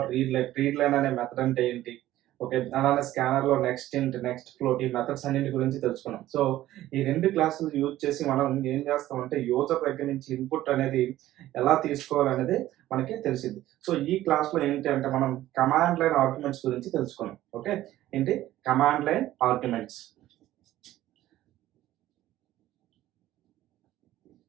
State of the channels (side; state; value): left; quieter; 14.5 dB